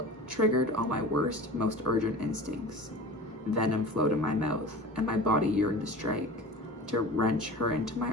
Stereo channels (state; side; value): normal; both; correlation 0.36